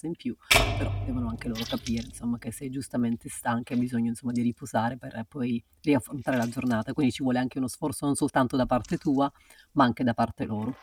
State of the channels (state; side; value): identical; both; correlation 1.00